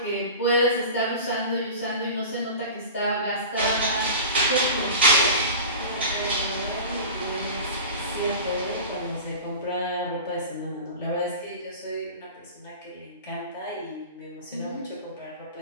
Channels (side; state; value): both; inverted; correlation -0.34